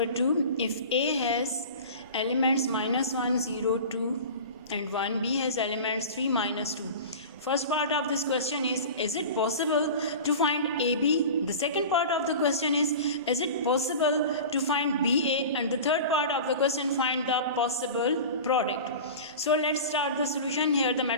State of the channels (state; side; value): inverted; both; correlation -0.34